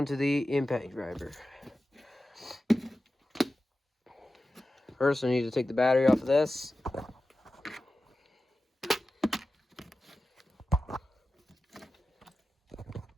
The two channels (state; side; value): normal; both; correlation 0.93